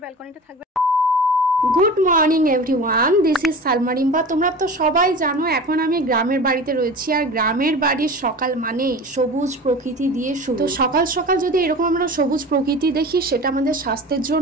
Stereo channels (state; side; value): normal; both; correlation 0.35